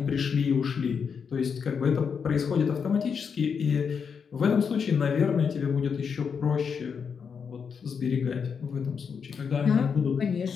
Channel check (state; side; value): quieter; right; 6.4 dB